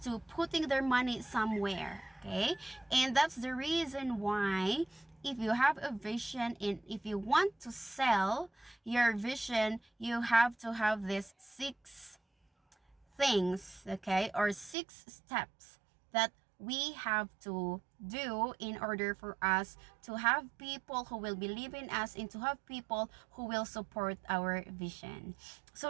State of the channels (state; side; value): drops out; left; at 14.8 s